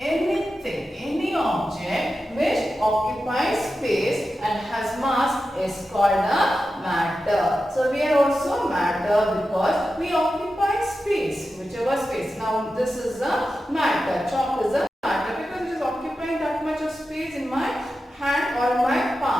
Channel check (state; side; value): normal; both; correlation 0.91